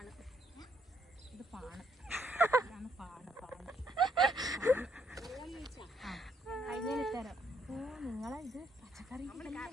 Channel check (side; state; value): both; normal; correlation 0.71